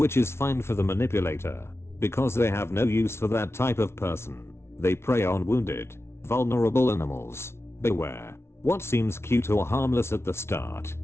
is fine for the manipulator, because they have no use for that type of person. They prey on wounded, vulnerable animals. Beware. What seems cute or harmless at the start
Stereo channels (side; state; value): right; late; 0.12 ms